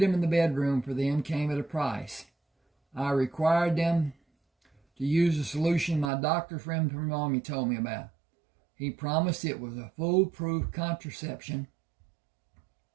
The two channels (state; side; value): drops out; left; at 6.1 s